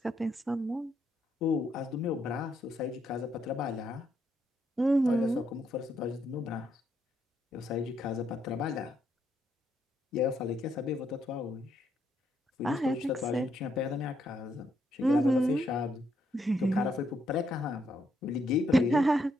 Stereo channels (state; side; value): normal; both; correlation 0.76